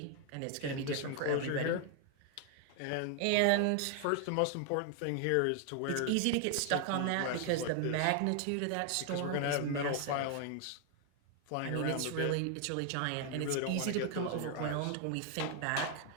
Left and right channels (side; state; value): both; different; correlation 0.00